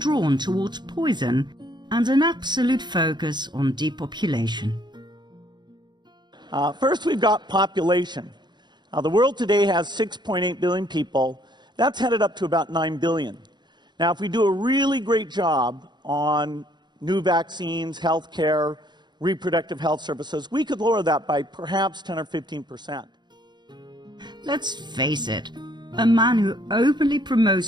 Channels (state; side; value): late; left; 0.21 ms